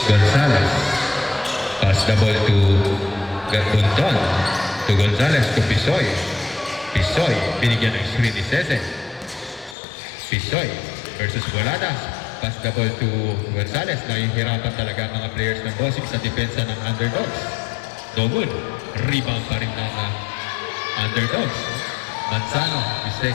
Pass the ball to Garbunton. To Gonzales, to Pisoy. Binigyan ng screen ni Cese. Pisoy versus Boladas. Pass the ball to Gonzales. Nahihirapan talaga ang mga players ng Bossing sa depensa ng Underdogs. No good. Rebound pa rin ng Underdogs. Manzano, the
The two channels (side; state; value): right; drops out; at 9.8 s